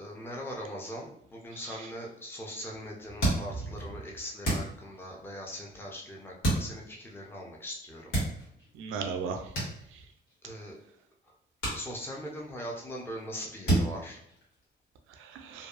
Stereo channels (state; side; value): normal; both; correlation 0.52